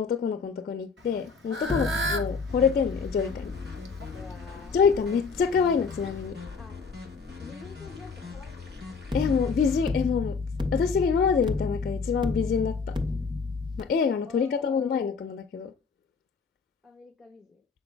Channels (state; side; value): quieter; right; 5.2 dB